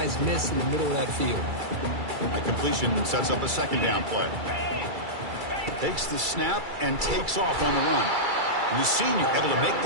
miss in the middle of that field. A completion sets up a second down play. Takes the snap and takes off on the run. And the senior able to make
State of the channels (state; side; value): late; left; 2.3 ms